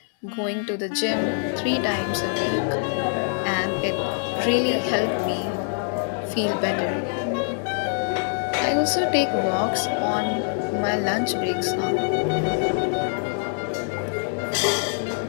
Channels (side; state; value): right; silent; digital silence